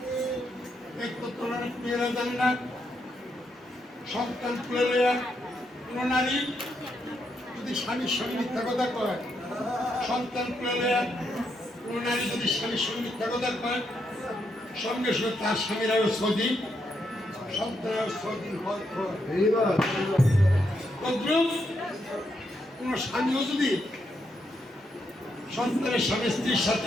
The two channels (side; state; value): both; normal; correlation 0.80